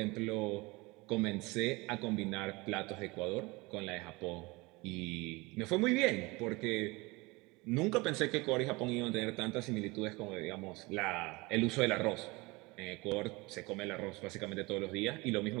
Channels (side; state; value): left; quieter; 24.1 dB